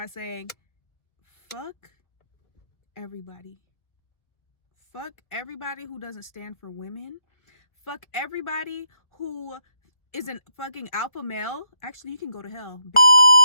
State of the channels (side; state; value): right; late; 1.4 ms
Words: saying, fuck everybody. Fuck everybody who doesn't stand for women. Fuck everybody who is an fucking alpha male. Actually, you can go to hell.